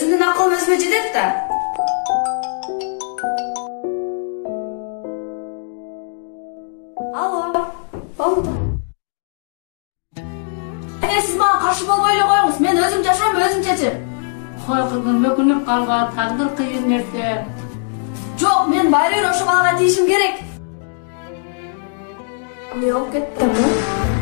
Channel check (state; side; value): silent; right; 66 dB below the other